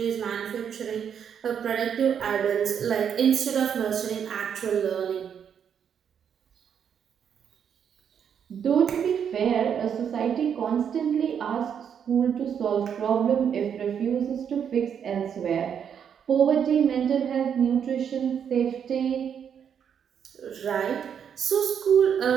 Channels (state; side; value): quieter; left; 8.0 dB